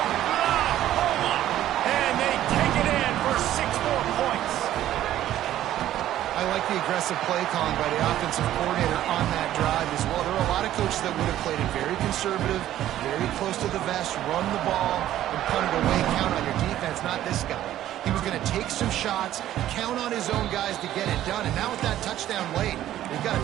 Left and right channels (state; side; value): quieter; left; 12.8 dB